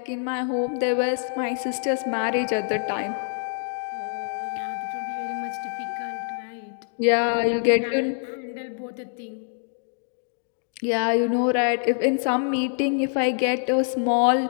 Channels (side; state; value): right; silent; 61 dB below the other